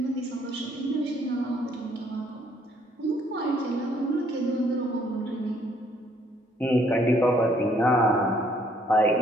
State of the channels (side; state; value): both; normal; correlation 0.65